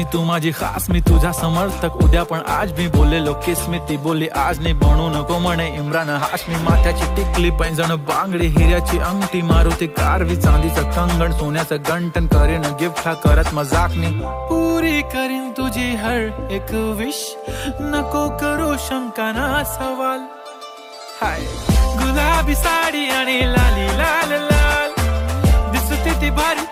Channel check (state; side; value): identical; both; correlation 1.00